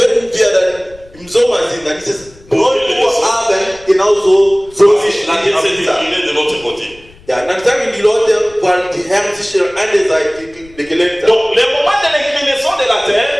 wir dann im Sommer sind, dann ist es 9 Uhr Abend, genauso so sich La Terre s'est angelegt. inclinée de l'autre côté. Ja, dann sagen die Leute, weil die Herd sich an der Seite gelegt hat. Donc, le moment de l'inclinaison de la Terre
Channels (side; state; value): left; noise; rumble, 25 dB below the sound